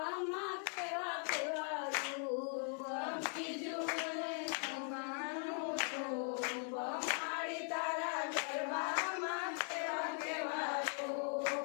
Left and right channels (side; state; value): right; silent; 51 dB below the other